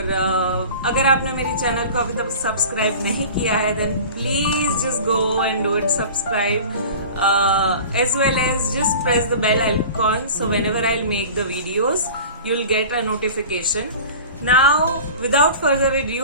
अगर आपने मेरी channel को अभी तक subscribe नहीं किया है then please just go and do it subscribe as well as just press the bell icon so whenever I'll make the videos you'll get a notification. Now without further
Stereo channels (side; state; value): both; inverted; correlation -0.38